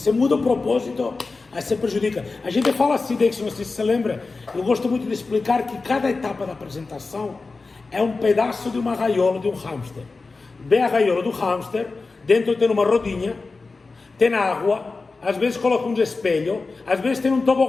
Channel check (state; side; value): quieter; right; 3.9 dB